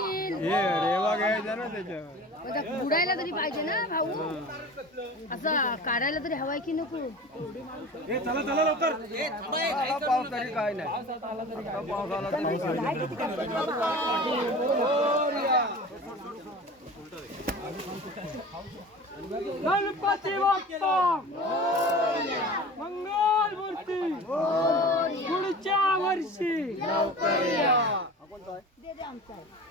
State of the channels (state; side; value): normal; both; correlation 0.37